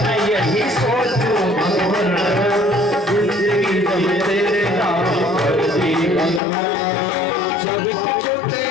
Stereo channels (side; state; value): right; drops out; at 6.4 s